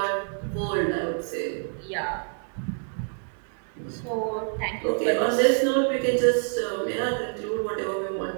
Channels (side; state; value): left; silent; digital silence